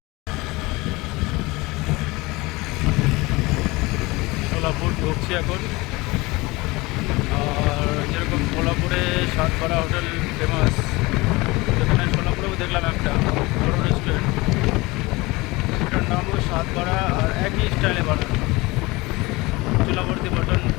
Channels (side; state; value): right; quieter; 22.6 dB